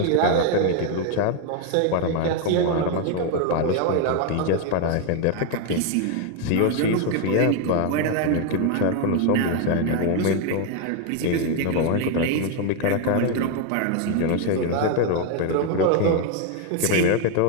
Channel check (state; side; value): different; both; correlation 0.01